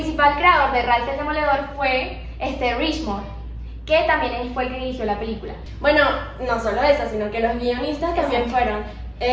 creador de Ralph el Demoledor fue Richmond, que también fue el que dirigió la película. Bueno, no solo esa, sino que los guionistas también fueron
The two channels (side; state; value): both; identical; correlation 1.00